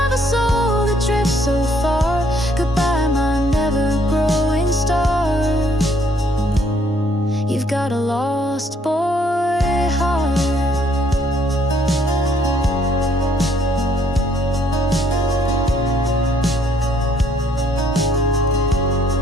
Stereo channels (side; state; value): both; normal; correlation 0.66